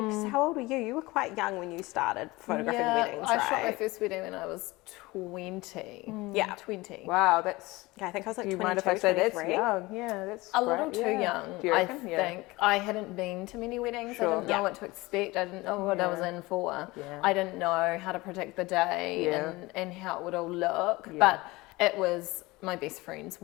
how old were you? You were quite young when you started photographing weddings, right? I shot my first wedding when I was 20. Yeah. 20. Wow, that's... Yeah, I think I was like Do you 22, mind if I say that's 23. young? Yeah, that's A great. little too young, Do you I reckon? think. I hadn't been to many weddings. Sure. I didn't know what to expect. I didn't know what I was in for. Yeah. I didn't know how to predict the day Yeah. and how it would all look. Yeah. But it was my best friend's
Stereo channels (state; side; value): quieter; right; 21.5 dB